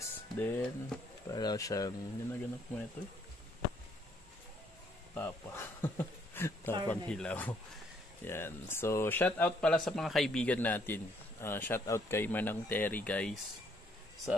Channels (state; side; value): normal; both; correlation 0.68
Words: Then, para siyang, ginaganap mo ito Tapang hilaw. Yan. So, shout out pala sa mga kaibigan natin. Shout out kay Manang Terry guys. Sa